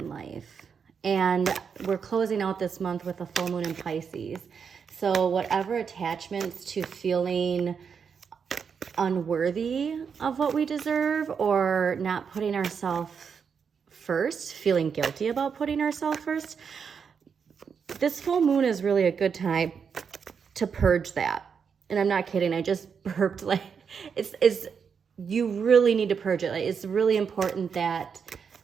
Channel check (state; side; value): quieter; left; 6.5 dB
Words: life. And we're closing out this month with a full moon in Pisces. So whatever attachments to feeling unworthy of what we deserve or not putting ourselves first, feeling guilty about putting ourselves first, this full moon is really a good time to purge that. And I'm not kidding, I just burped. Like it's you really need to purge it. Like it's really important that